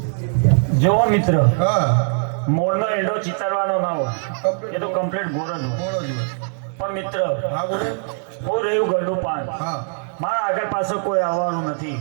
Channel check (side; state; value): left; silent; 63 dB below the other